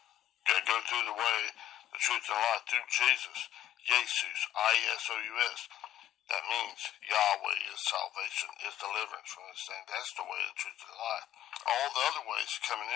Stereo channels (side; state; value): right; quieter; 12.2 dB